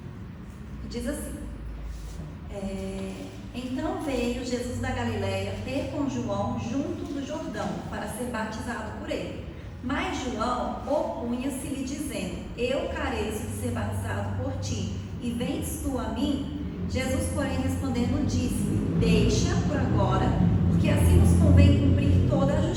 Diz assim: Então veio Jesus da Galileia ter com João junto do Jordão, para ser batizado por ele. Mas João opunha-se-lhe, dizendo: Eu careço de ser batizado por ti, e vens tu a mim? Jesus, porém, respondendo, disse-lhe: Deixa por agora, porque assim nos convém cumprir toda a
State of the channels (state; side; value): identical; both; correlation 1.00